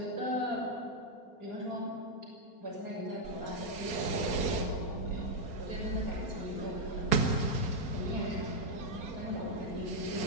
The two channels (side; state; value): right; late; 4.3 ms